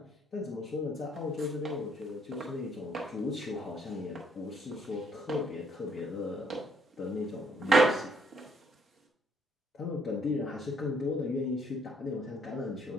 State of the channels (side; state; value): both; normal; correlation 0.68